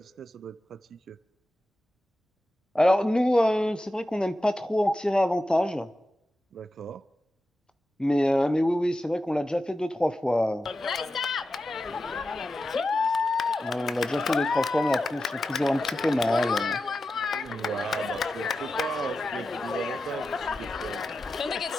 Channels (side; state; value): both; normal; correlation 0.92